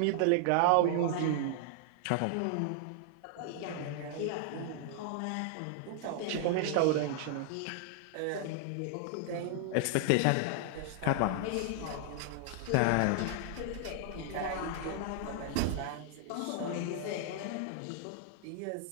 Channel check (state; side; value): different; both; correlation -0.01